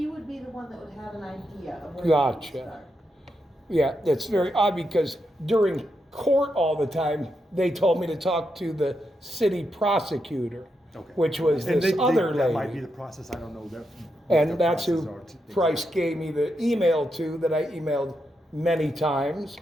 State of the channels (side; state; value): both; normal; correlation 0.84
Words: would be the one that would have an idea of where. Gotcha. to start. Yeah, that's very odd because during court all the time, they told me to talk to the city prosecutor, Okay. which was And this other that might be lady. the process, I don't know that. what And their that's processes who are Price gave me the email to, that I emailed many times.